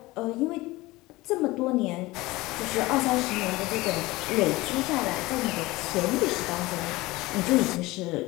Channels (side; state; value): right; quieter; 20.3 dB